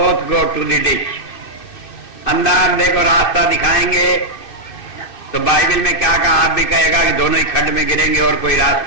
go to the ditch. अंधा अंधे को रास्ता दिखाएंगे, तो बाइबल में क्या कहा? आप भी कहेगा कि दोनों ही खड्ड में गिरेंगे और कोई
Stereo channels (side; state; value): right; late; 2.5 ms